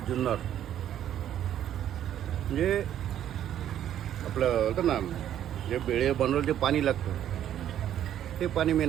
जुन्नर. म्हणजे आपलं होतं ना जे बेळे बनवलं जे पाणी लागतं ते पाणी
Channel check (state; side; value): quieter; left; 10.9 dB